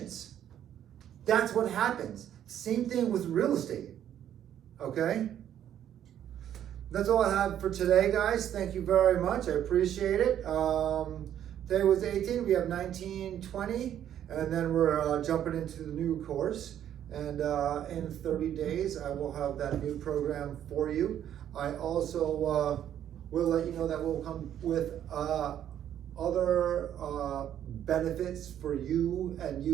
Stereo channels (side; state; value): left; quieter; 10.5 dB